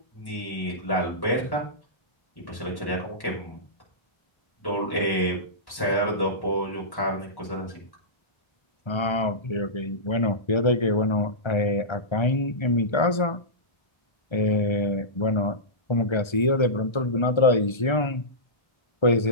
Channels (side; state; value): right; late; 1.3 ms